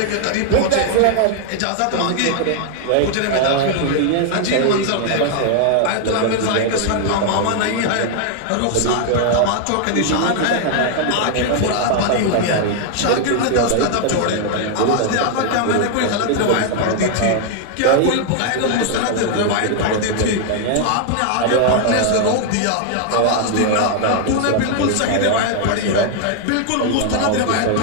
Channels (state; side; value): different; both; correlation 0.00